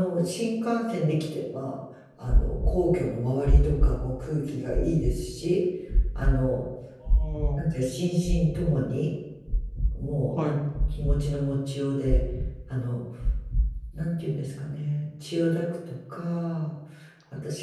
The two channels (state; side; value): identical; both; correlation 1.00